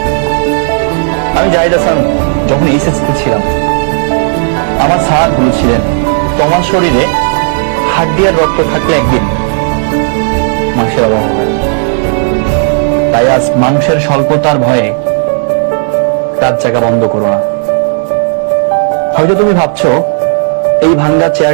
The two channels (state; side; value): silent; left; digital silence